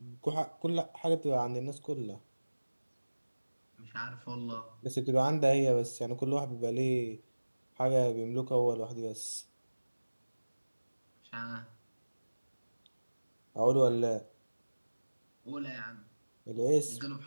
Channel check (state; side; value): inverted; both; correlation -1.00